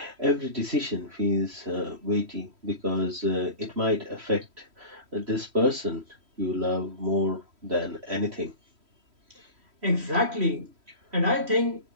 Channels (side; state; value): left; late; 3.1 ms